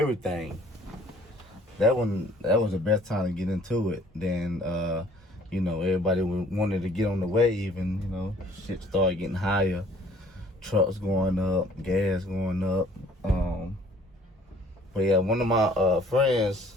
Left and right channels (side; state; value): both; normal; correlation 0.56